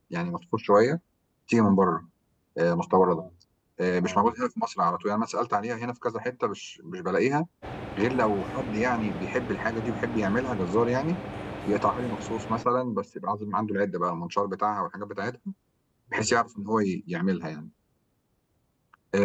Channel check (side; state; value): both; identical; correlation 1.00